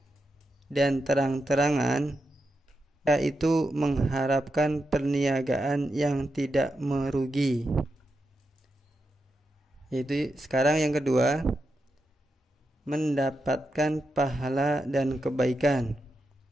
dan terang-terangan, yaitu mengharapkan perniagaan yang tidak merugi. Yaitu sekarang yang kedua, mendapatkan pahala dan kebaikan.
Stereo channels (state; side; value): normal; both; correlation 0.87